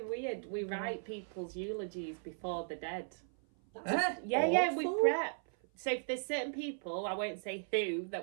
weird. We write people's eulogies before they're dead. That's Yeah, we awful. prep. So if there's certain people, I won't say who, that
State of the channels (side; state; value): left; silent; 53 dB below the other